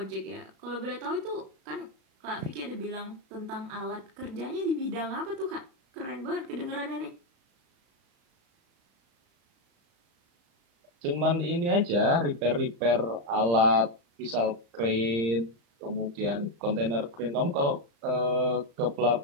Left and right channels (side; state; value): left; late; 35 ms